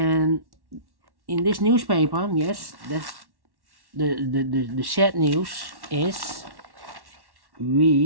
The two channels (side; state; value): left; late; 1.1 ms